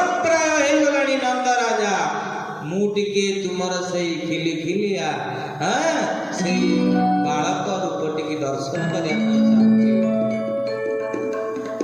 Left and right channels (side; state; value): both; identical; correlation 1.00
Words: ପ୍ରାୟ ହେଇଗଲାଣି ନନ୍ଦ ରାଜା। ମୁଁ ଟିକେ ତୁମର ସେଇ ଖିଲିଖିଲିଆ ସେଇ ବାଳକ ରୂପ ଟିକେ ଦର୍ଶନ କରିବା ପାଇଁ ଚାହୁଁଛି।